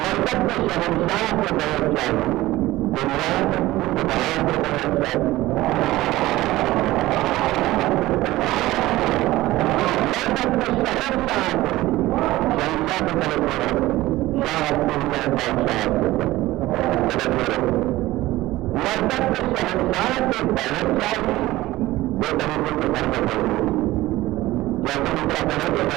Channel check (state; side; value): quieter; left; 17.2 dB